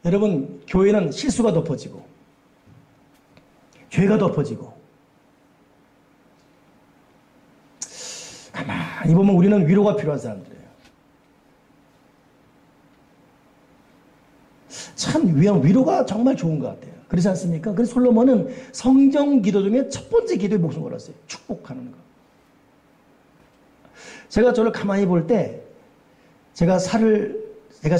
여러분, 교회는 실수가 덮어지고 죄가 덮어지고 가만히 보면 우리는 위로가 필요한 사람들이에요. 참 위로가 정말 좋은 것 같아요. 그렇지 않습니까? 그래서 솔로몬은 성경 기도 중에 첫 번째 기도에 목숨 걸었어요. 축복하는 거. 제가 저를 가만히 볼 때 제가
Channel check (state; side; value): identical; both; correlation 1.00